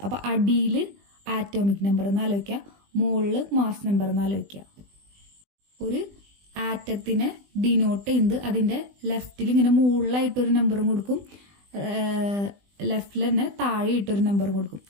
അപ്പൊ അടിയിൽ ആറ്റോമിക് നമ്പർ എന്ന് ആലോചിക്കുക, മുകളിൽ മാസ് നമ്പർ എന്ന് ആലോചിക്കുക. ഒരു ആറ്റത്തിനെ ഡിനോട്ട് ചെയ്യുന്നത് അതിന്റെ ലെഫ്റ്റിൽ ഇങ്ങനെ മുകളിലായിട്ടൊരു നമ്പറും കൊടുക്കും, ലെഫ്റ്റിൽ തന്നെ താഴെ ഇട്ടൊരു നമ്പർ കൊടുക്കും.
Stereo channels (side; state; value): left; late; 20 ms